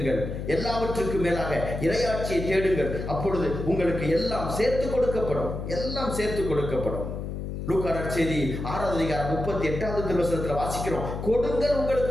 எல்லாவற்றுக்கும் மேலாக இறையாட்சியை தேடுங்கள், அப்பொழுது உங்களுக்கு எல்லாம் சேர்த்து கொடுக்கப்படும். லூக்கா நற்செய்தி 6:38 திருவசனத்தில் வாசிக்கிறோம், கொடுங்கள்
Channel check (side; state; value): left; noise; hum, 6 dB below the sound